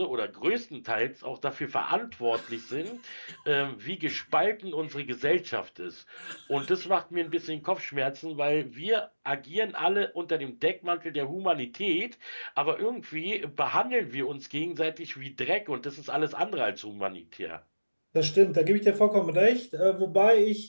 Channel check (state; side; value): inverted; both; correlation -1.00